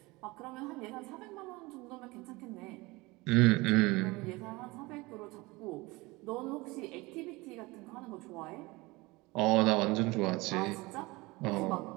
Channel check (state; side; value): quieter; left; 22.8 dB